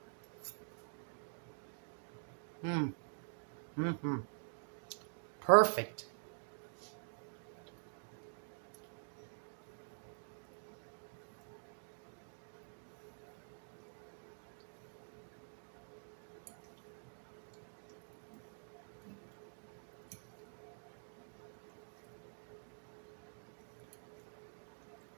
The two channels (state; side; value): silent; left; digital silence